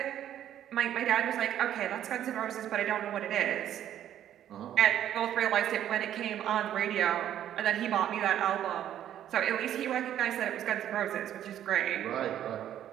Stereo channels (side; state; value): left; quieter; 11.0 dB